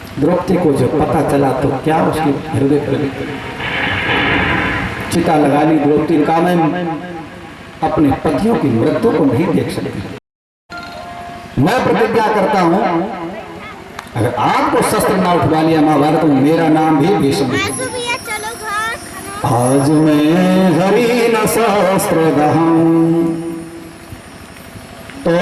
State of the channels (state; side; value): identical; both; correlation 1.00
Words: द्रौपदी को जब पता चला तो क्या उसके हृदय पर चिता लगा ली। द्रौपदी का मैं अपने पतियों की मृत्यु को नहीं देख सकती। मैं प्रतिज्ञा करता हूं अगर आपको शस्त्र ना उठवा लिया महाभारत में मेरा नाम भी भीष्म। आज मैं हरि न शस्त्र दहूं तो